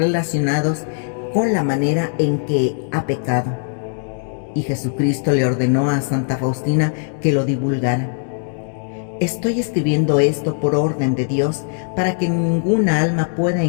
con la manera en que ha pecado, y Jesucristo le ordenó a Santa Faustina que lo divulgara. Estoy escribiendo esto por orden de Dios para que ninguna alma pueda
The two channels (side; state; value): right; silent; 66 dB below the other